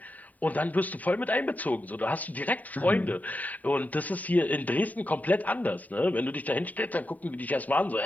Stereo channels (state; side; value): late; right; 0.075 ms